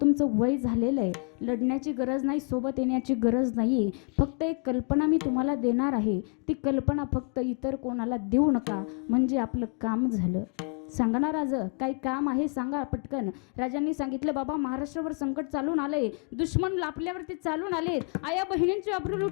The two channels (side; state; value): right; quieter; 38.7 dB